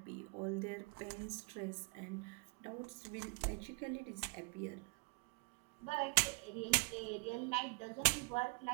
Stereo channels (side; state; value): left; quieter; 32.4 dB